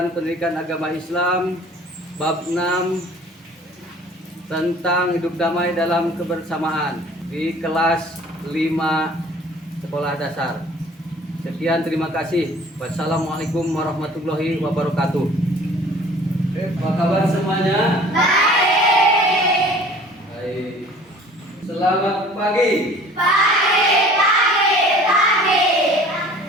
pendidikan agama Islam bab 6 tentang hidup damai dalam kebersamaan di kelas 5 sekolah dasar. Sekian, terima kasih. Wassalamualaikum warahmatullahi wabarakatuh. Apa kabar semuanya? Baik. Baik. Selamat pagi.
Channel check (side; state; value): both; normal; correlation 0.49